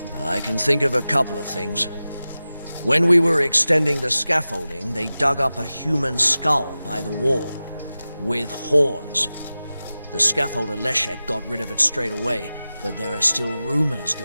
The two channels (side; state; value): both; inverted; correlation -0.95